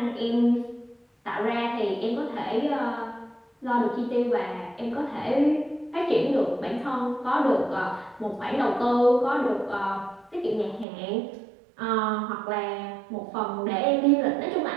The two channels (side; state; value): left; drops out; at 10.9 s